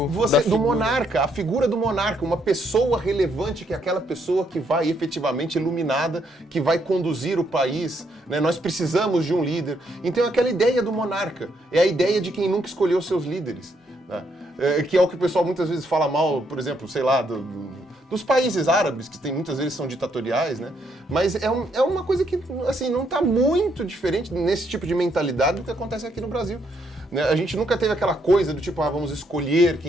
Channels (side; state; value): both; normal; correlation 0.74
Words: monarca, a figura do monarca, uma pessoa relevante, que é aquela pessoa que vai efetivamente iluminada, que vai conduzir o país, né? Nós precisamos de um líder. Então aquela ideia do monarca, é a ideia de quem nunca escolheu seus líderes, né? Que é o que o pessoal muitas vezes fala mal, por exemplo, sei lá, dos países árabes, que muitas vezes são ditatoriais, né? Mas é uma coisa que, assim, não está muito diferente nesse tipo de mentalidade do que acontece aqui no Brasil. Né? A gente nunca teve aquela coisa do tipo, vamos escolher